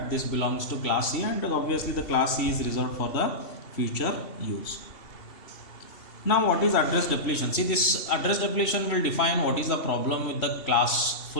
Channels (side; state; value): right; late; 2.7 ms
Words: this belongs to class C, and obviously the class C is reserved for the future use. Now what is address depletion? See, this address depletion will define what is the problem with the